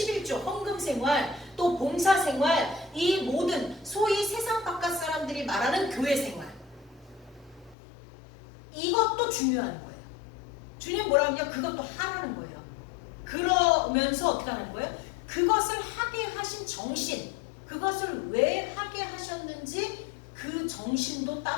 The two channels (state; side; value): drops out; right; at 7.8 s